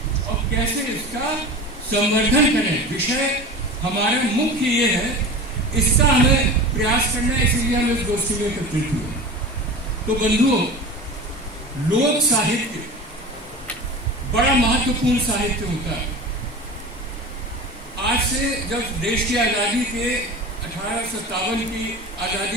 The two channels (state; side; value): normal; both; correlation 0.33